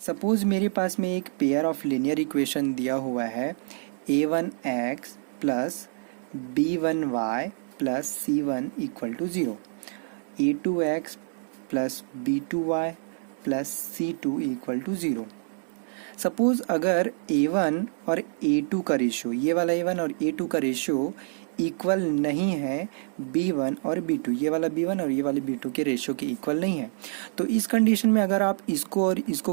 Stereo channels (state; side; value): silent; left; digital silence